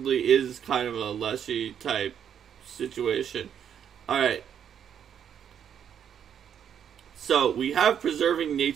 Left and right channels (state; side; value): quieter; left; 8.7 dB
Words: is kind of a leshy type situation. Alright. So, we have preserving